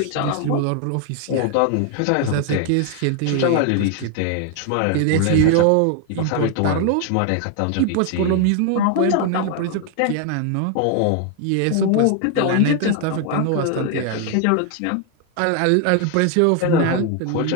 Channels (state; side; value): different; both; correlation 0.00